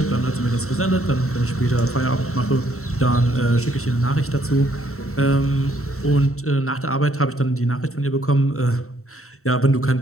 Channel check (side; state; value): right; late; 0.63 ms